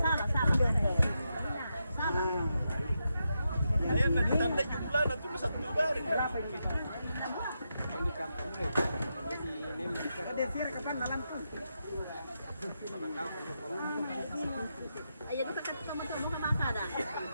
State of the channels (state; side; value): inverted; both; correlation -0.85